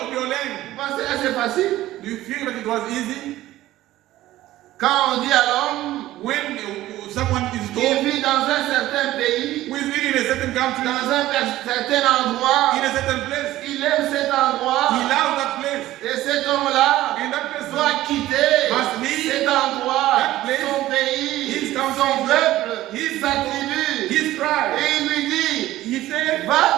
of your land. Vous pensez que c'est facile? Do you feel that it was easy? Quand on dit à l'homme, When someone is il told vit dans un certain pays, who is living in a certain country, dans un certain endroit, in a certain place, il aime cet endroit, he loves that place. et cet homme-là And that person doit quitter must leave cet endroit, that place, son pays, his country, son peuple, his sa people, tribu. his tribe. Et il lui dit, He said,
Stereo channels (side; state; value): left; quieter; 15.3 dB